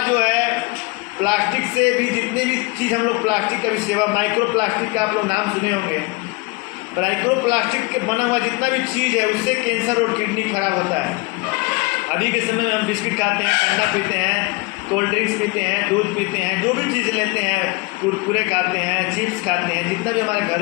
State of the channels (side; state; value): right; quieter; 26.0 dB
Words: जो है प्लास्टिक से भी, जितनी भी चीज़ हम लोग प्लास्टिक का भी सेवा, माइक्रो प्लास्टिक का आप लोग नाम सुने होंगे, माइक्रो प्लास्टिक के बना हुआ जितना भी चीज़ है उससे कैंसर और किडनी खराब होता है। अभी के समय में हम बिस्किट खाते हैं, ठंडा पीते हैं, कोल्ड ड्रिंक्स पीते हैं, दूध पीते हैं, जो भी चीज़ लेते हैं, कुरकुरे खाते हैं, चिप्स खाते हैं, जितना भी हमारे